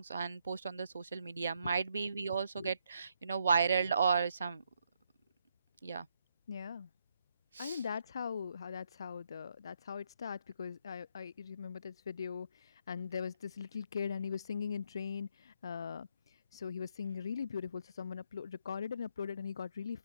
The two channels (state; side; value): inverted; both; correlation -0.76